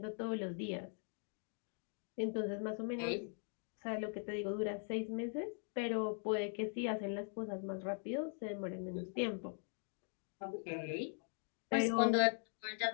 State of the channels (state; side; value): silent; right; 50 dB below the other